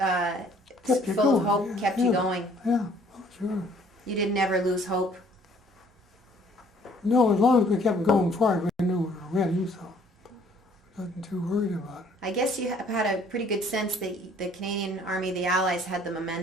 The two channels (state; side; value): normal; both; correlation 0.59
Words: of hope, kept you going. Yeah, oh, sure. You didn't ever lose hope. No, as long as we kept going forward, we knew we were winning, so I wasn't too worried about it. I guess you have had a pretty good sense that the Canadian Army, the Allies, had the